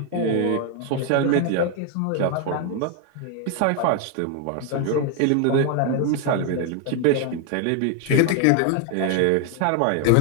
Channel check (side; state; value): both; different; correlation 0.01